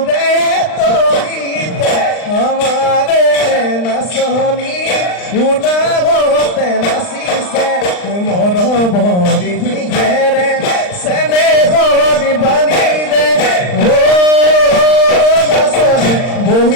তৰিতে আমাৰে নাচনি উলাগতে নাচিছে মৰ ভৰি ঘেৰে চেনে হৰি বালিৰে ও নাচনি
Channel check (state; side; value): late; right; 39 ms